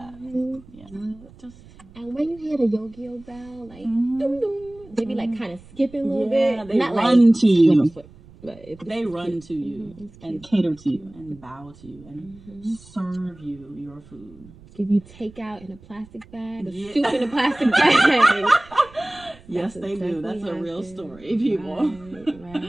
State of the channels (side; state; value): right; noise; rumble, 23 dB below the sound